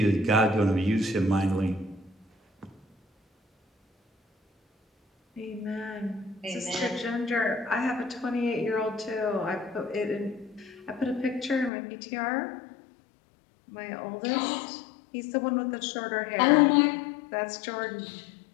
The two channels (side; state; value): right; drops out; at 11.7 s